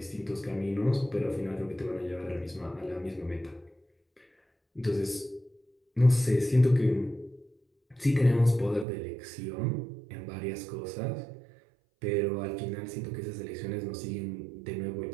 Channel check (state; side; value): drops out; left; at 8.8 s